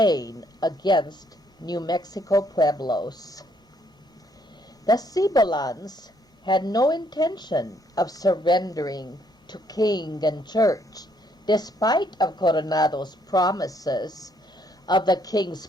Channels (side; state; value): both; normal; correlation 0.69